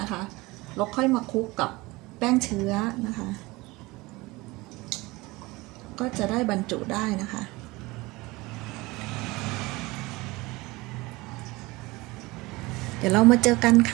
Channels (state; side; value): quieter; left; 22.0 dB